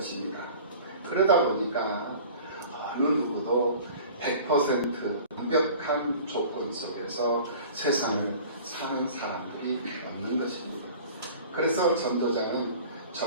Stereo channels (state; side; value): inverted; both; correlation -0.44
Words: 그러다 보니까 어느 누구도 100% 완벽한 조건 속에서 세상을 사는 사람들이 없는 것입니다. 그래서 전도자는